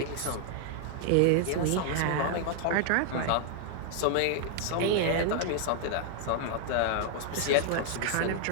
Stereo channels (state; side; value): different; both; correlation 0.00